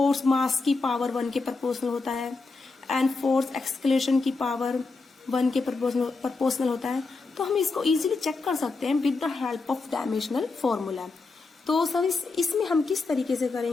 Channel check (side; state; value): right; quieter; 3.8 dB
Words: मास की पावर 1 के प्रोपोर्शनल होता है एंड फोर्स एक्सक्लेशन की पावर 1 के प्रोपोर्शनल होता है, तो हम इसको इजीली चेक कर सकते हैं with the help of dimensional formula. तो सर इसमें हम किस तरीके से